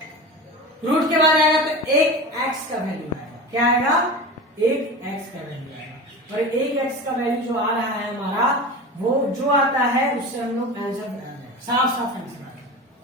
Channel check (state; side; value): normal; both; correlation 0.30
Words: रूट के बाद आएगा तो एक x का वैल्यू आएगा, क्या आएगा, एक x का वैल्यू आएगा, और एक x का वैल्यू जो आ रहा है हमारा, वो जो आता है उससे हम लोग आंसर बना देंगे, साफ साफ आंसर आ गया।